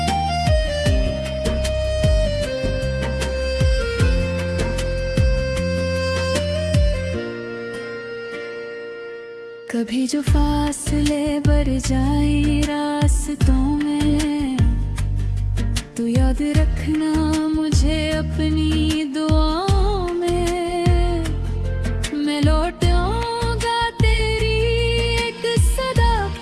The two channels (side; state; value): both; identical; correlation 1.00